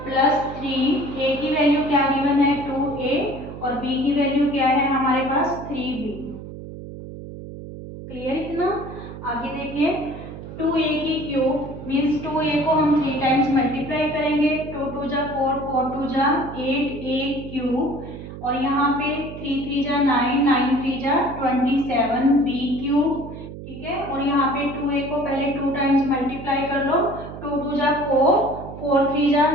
प्लस 3a की वैल्यू क्या गिवन है? 2a और b की वैल्यू क्या है हमारे पास? 3b। क्लियर इतना? आगे देखिए, 2a की क्यूब मीन्स 2a को हम 3 टाइम्स मल्टीप्लाई करेंगे। 2 2 जा 4, 4 2 जा 8a³ और यहाँ पे 3 3 जा 9, 9 3 जा 27b³, ठीक है। और यहाँ पे 2a को पहले 2 टाइम्स मल्टीप्लाई कर लो। 2 2 जा 4, 4 3 जा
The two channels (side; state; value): right; noise; hum, 12 dB below the sound